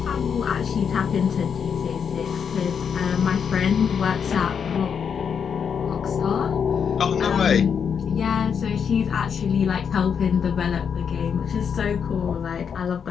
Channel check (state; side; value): quieter; right; 7.1 dB